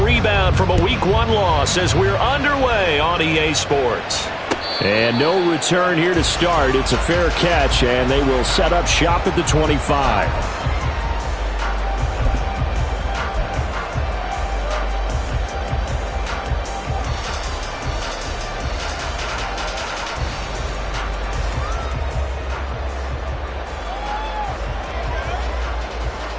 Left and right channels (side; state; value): both; identical; correlation 1.00